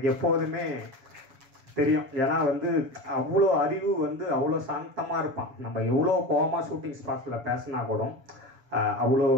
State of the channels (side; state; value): left; late; 7.1 ms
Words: எப்போதுமே தெரியும். ஏன்னா வந்து அவ்வளோ அறிவு வந்து அவ்வளோ சாந்தமாக இருப்பான். நம்ம எவ்வளோ கோவமாக ஷூட்டிங் ஸ்பாட்டில் பேசினா கூட